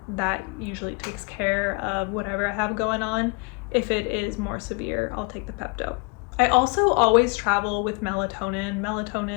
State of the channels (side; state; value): right; quieter; 31.3 dB